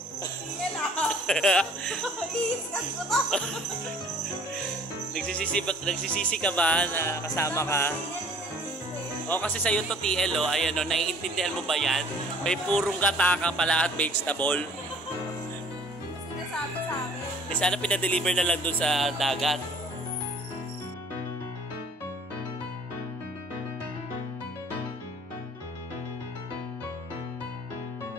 Nagsisisi ka ba na kasama ka? O kasi sa'yo to TL o. Ayan o, naiintindihan mo ba yan? May purong gata ka pala at vegetable. sinasabi sa akin. Sana pinadeliver na lang dun sa dagat.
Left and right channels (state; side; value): normal; both; correlation 0.53